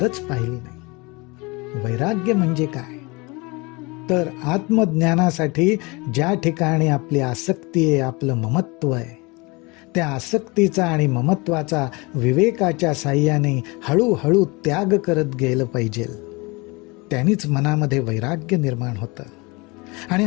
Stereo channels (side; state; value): right; quieter; 26.1 dB